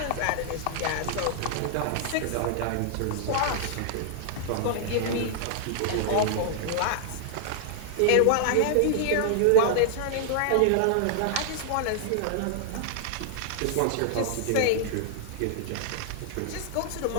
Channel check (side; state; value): both; different; correlation -0.01